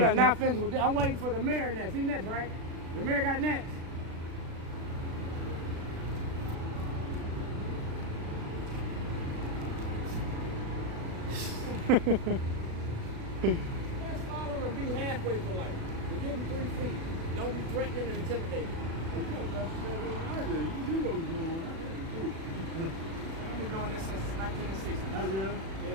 not finished with this. I'm waiting for the mayor next. He next, right? The mayor got next. Let's follow him and be halfway for life. We're getting 3 feet. Don't be threatening and intimidating. You know what was going on. I've been doing this since 1960. Have you?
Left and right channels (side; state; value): left; late; 36 ms